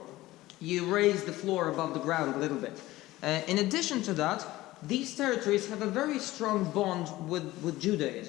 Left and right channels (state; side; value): quieter; right; 17.4 dB